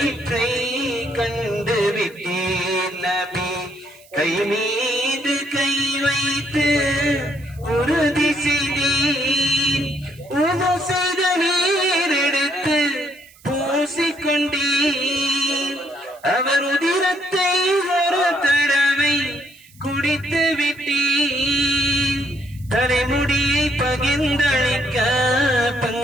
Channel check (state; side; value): noise; right; hiss, 26 dB below the sound